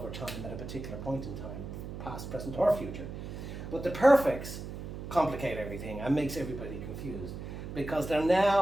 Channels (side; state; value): right; noise; hum, 8 dB below the sound